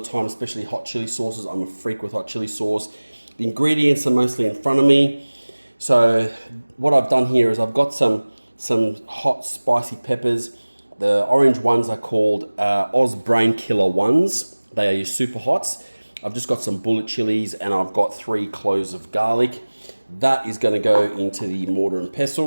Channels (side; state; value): both; inverted; correlation -1.00